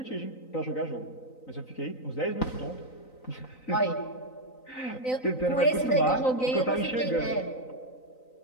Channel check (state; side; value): late; right; 3.9 ms